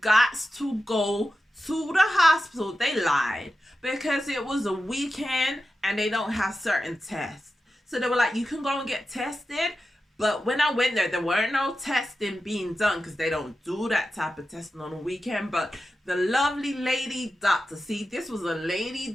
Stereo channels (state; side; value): normal; both; correlation 0.92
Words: got to go to the hospital. They lied, because it was a weekend and they don't have certain tests. So they were like, you can go and get tested. But when I went there weren't no testing being done, because they don't do that type of testing on a weekend. But the lovely lady doctor, see, this was a